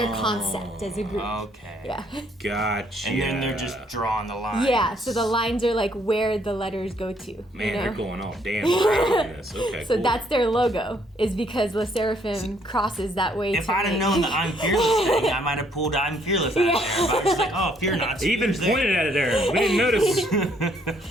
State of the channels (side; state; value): both; normal; correlation 0.67